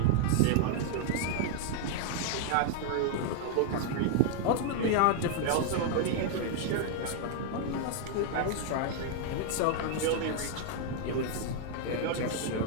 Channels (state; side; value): different; both; correlation 0.00